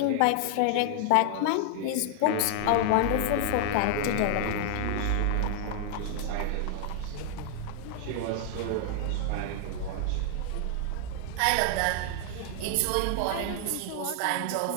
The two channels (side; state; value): both; different; correlation 0.00